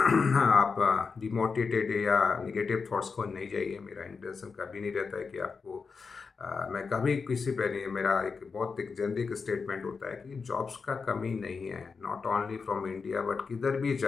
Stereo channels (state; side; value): quieter; right; 5.1 dB